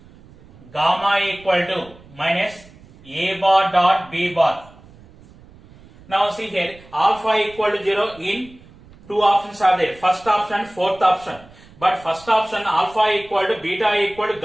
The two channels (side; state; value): right; noise; rumble, 24 dB below the sound